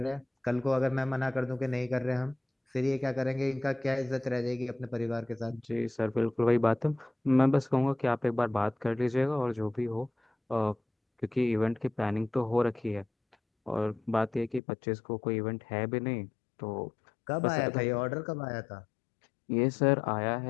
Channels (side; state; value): right; drops out; at 14.6 s